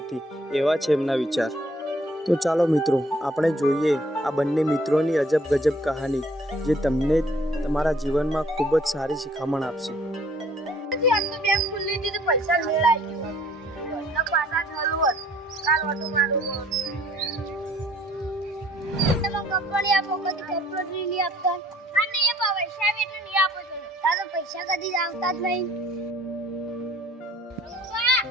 એવા છે એમના વિચાર. તો ચાલો મિત્રો, આપણે જોઈએ આ બંને મિત્રોની અજબ ગજબ કહાની, જે તમને તમારા જીવનમાં ખૂબ જ સારી શિખામણ આપશે. પૈસા મેળાઈ ગયો પાછા ચાલુ હોત કાલ ઓટો મારું કંપની આપો કદી કંપની નહીં આપતા અને એ પૈસા બી એટલે નહીં આપો છો તારો પૈસા કદી આવતા જ નહીં.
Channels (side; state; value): both; normal; correlation 0.59